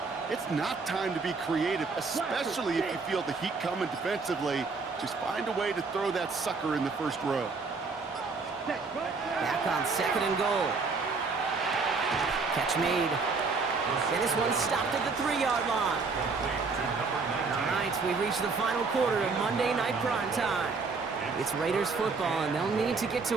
it's not time to be creative, especially if you feel the heat coming defensively. Just find a way to throw that sucker in the 1st row. Back on 2nd and goal. Catch made. And this one stopped at the 3-yard line. All right, we've reached the final quarter of Monday Night Prime Time. It's Raiders football, and they'll need to get to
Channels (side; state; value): left; quieter; 4.4 dB